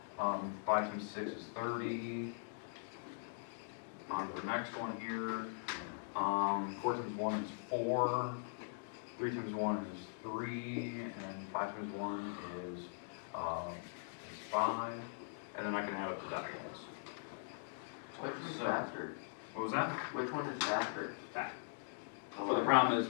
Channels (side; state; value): right; silent; digital silence